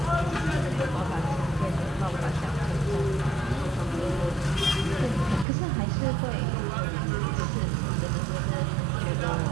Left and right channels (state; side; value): drops out; left; at 5.5 s